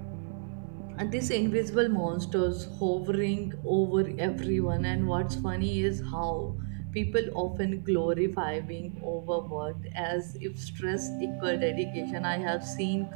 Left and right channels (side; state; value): left; silent; digital silence